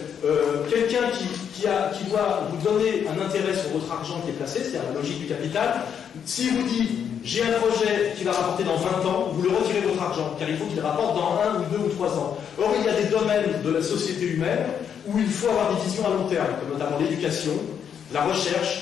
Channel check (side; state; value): right; quieter; 8.0 dB